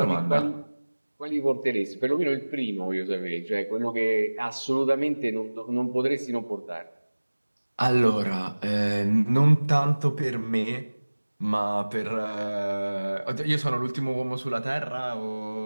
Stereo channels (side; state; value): both; inverted; correlation -1.00